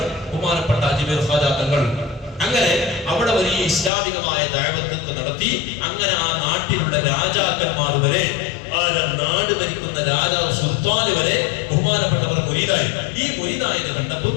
ബഹുമാനപ്പെട്ട അജ്മീർ ഖാജാ തങ്ങൾ. അങ്ങനെ അവിടെ വലിയ ഇസ്ലാമികമായ ദഅവത്ത് നടത്തി. അങ്ങനെ ആ നാട്ടിലുള്ള രാജാക്കന്മാർ വരെ, ആ നാട് ഭരിക്കുന്ന രാജാവ് സുൽത്താൻ വരെ ബഹുമാനപ്പെട്ടവർ മുരീദായി. ഈ മുരീദായത് കണ്ടപ്പോൾ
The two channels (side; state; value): right; drops out; at 3.9 s